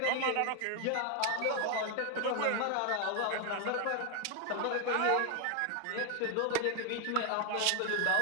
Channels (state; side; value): different; both; correlation 0.01